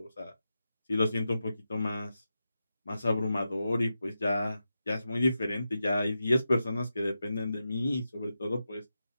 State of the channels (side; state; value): both; inverted; correlation -0.90